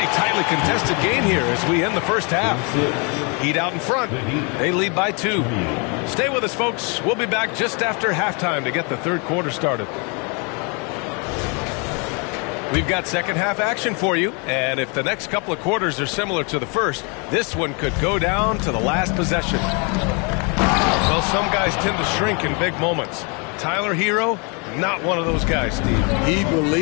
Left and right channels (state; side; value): quieter; right; 33.6 dB